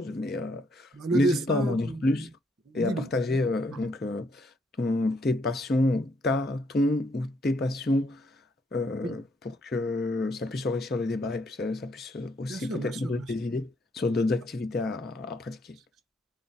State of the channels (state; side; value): normal; both; correlation 0.72